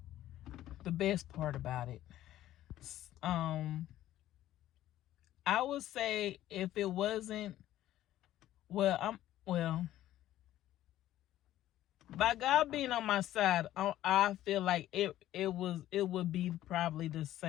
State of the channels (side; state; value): right; quieter; 13.6 dB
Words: the best part about it. I would say if it wasn't, by God being on my side, I feel like it would be probably the